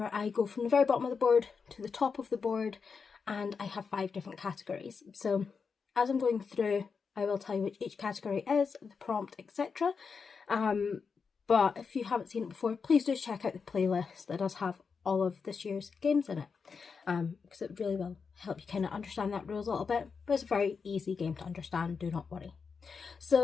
I go from the very bottom of the board to the top of the board, and I have 5 different categories. So as I'm going through, I will tell you which each category is, the prompt, etc. But if you haven't seen it before, please do check out the playlist that does have all of this year's games in it, because it really will help you kind of understand that rules a little bit. But it's a very easy game to understand, do not worry.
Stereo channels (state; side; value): quieter; right; 5.5 dB